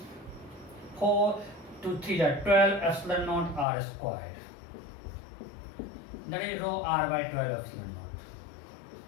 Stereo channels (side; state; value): right; drops out; at 3.7 s